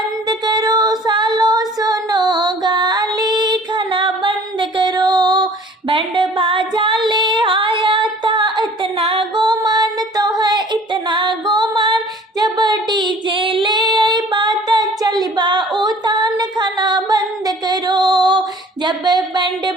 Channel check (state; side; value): normal; both; correlation 0.50